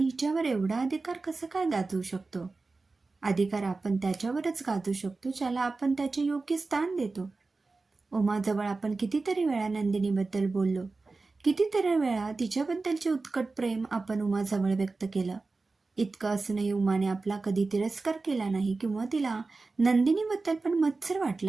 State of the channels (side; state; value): left; quieter; 3.7 dB